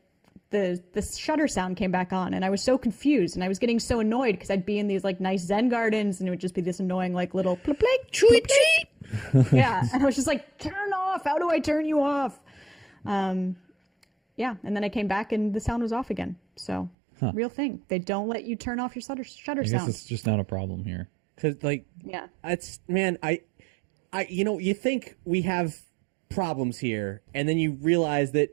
the shutter sound came back on and I was so confused and I was getting so annoyed because I'd be in these like nice Zen gardens and it would just be this annoying like little plip plip cheep cheep. Yeah. And I was just like, turn off. How do I turn you off? Yeah. And then I came back and the sound was off again. So real thing. They don't let you turn off your shutter I guess sound. it's just not a problem here. Cause like, Yeah. it's, man, I, you think we have problems here and then you realize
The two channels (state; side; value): drops out; left; at 16.9 s